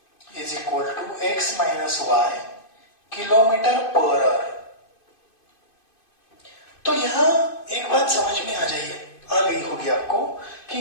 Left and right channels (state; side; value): late; right; 2.5 ms